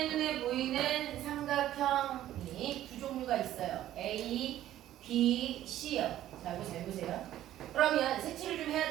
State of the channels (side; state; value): left; quieter; 13.0 dB